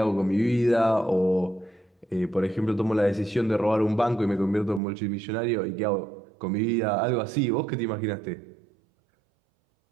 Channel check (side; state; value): left; drops out; at 4.8 s